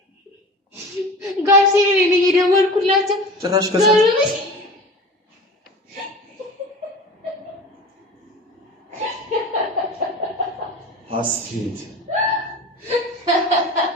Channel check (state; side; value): normal; both; correlation 0.36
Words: ጋር ሲሪ ነው የደወልኩላቸው ጭራሽ ከዛ አስቴት